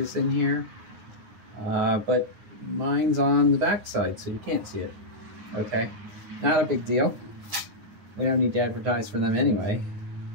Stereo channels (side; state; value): left; late; 9.5 ms